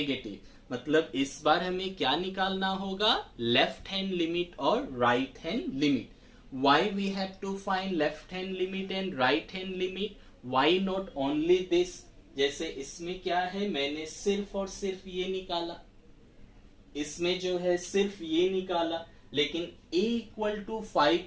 मतलब इस बार हमें क्या निकालना होगा? लेफ्ट हैंड लिमिट और right hand limit. why we have to find left hand limit and right hand limit? why not only this? जैसे इसमें क्या है, मैंने सिर्फ और सिर्फ ये निकाला, इसमें जो है सिर्फ ये निकाला, लेकिन a इक्वल टू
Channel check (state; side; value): identical; both; correlation 1.00